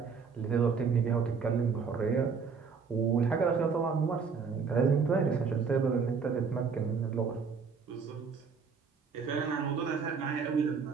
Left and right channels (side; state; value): left; quieter; 5.6 dB